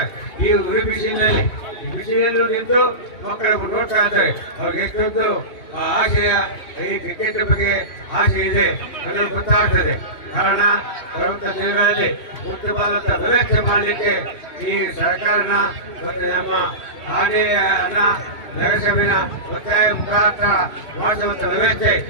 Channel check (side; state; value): right; late; 3.0 ms